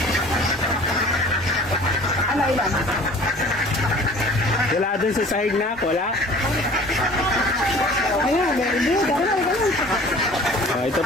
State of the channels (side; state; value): both; normal; correlation 0.47